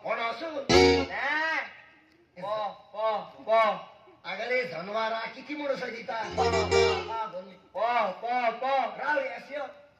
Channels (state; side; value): identical; both; correlation 1.00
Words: कोण असू आगले जनवारा किती म्हणून सजिता राव येसयो